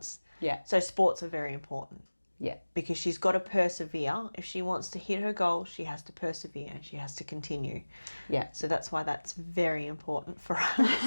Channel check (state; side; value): inverted; both; correlation -1.00